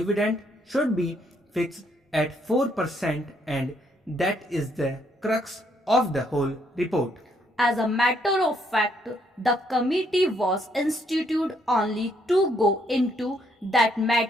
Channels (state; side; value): normal; both; correlation 0.71